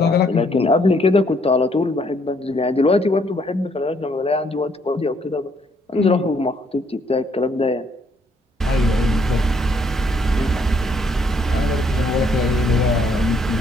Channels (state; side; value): normal; both; correlation 0.68